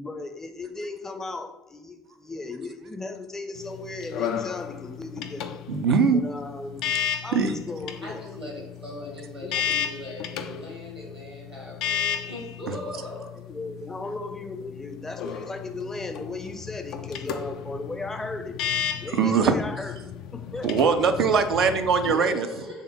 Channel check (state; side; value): normal; both; correlation 0.39